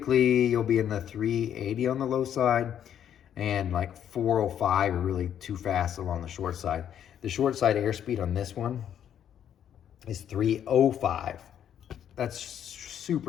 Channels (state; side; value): quieter; right; 9.6 dB